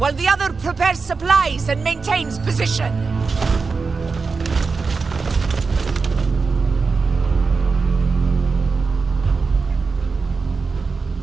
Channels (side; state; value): left; quieter; 4.6 dB